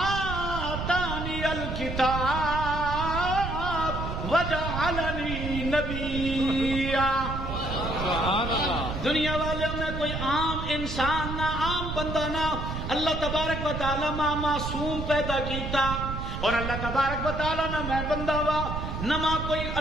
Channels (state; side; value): noise; right; rumble, 4 dB below the sound